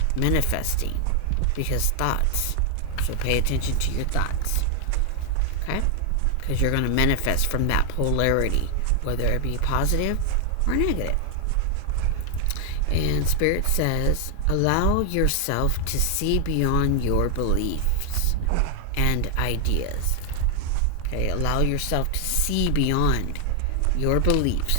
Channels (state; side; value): different; both; correlation 0.00